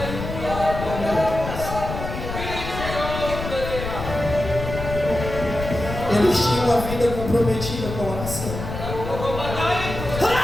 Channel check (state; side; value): noise; left; rumble, 7 dB below the sound